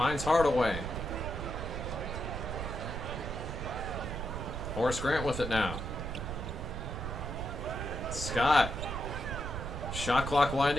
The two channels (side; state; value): right; noise; rumble, 5 dB below the sound